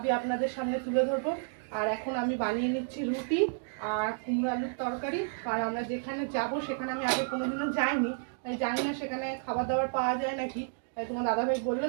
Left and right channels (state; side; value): silent; left; digital silence